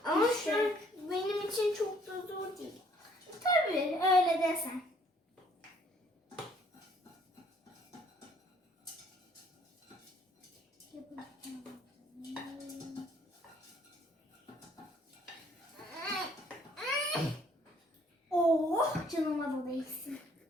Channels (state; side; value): normal; both; correlation 0.62